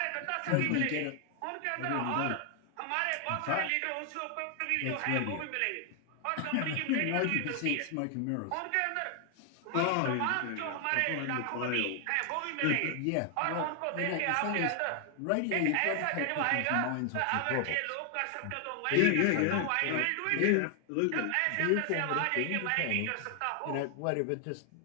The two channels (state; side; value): different; both; correlation 0.00